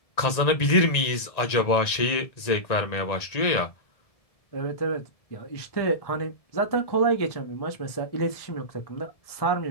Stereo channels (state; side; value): late; right; 1.9 ms